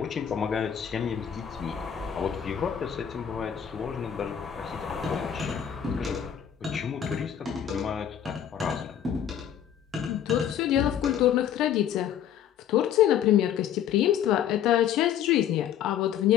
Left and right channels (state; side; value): quieter; right; 9.5 dB